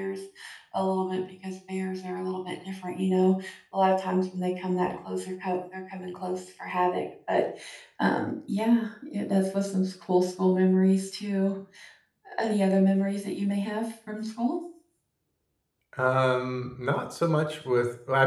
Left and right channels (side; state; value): both; identical; correlation 1.00